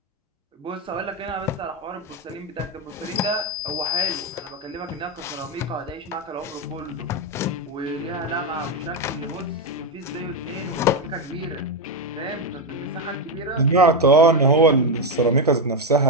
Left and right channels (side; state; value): both; normal; correlation 0.08